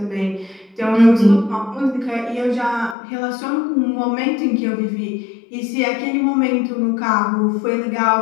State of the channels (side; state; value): right; drops out; at 3.0 s